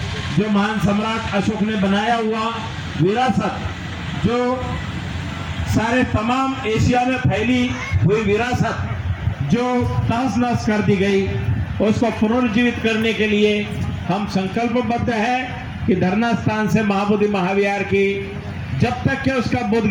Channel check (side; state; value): both; identical; correlation 1.00